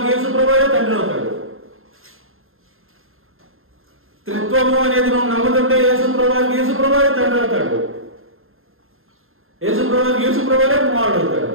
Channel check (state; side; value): late; left; 0.61 ms